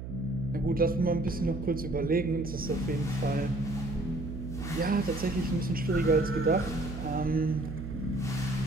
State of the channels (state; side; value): noise; right; hum, 8 dB below the sound